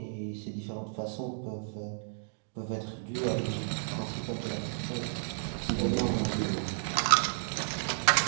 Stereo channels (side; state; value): left; silent; digital silence